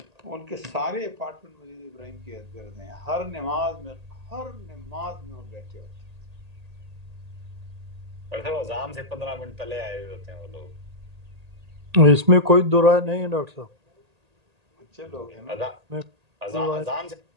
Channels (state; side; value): late; left; 1.8 ms